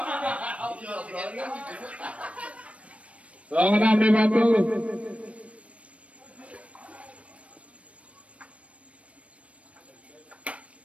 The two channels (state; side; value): late; left; 0.063 ms